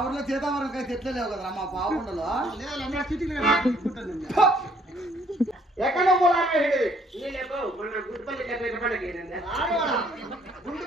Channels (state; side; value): normal; both; correlation 0.64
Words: ఊర్లో సీతాఫలం కాయ చెట్లే లేవు కదరా మా పావుండలో. ఎక్కడ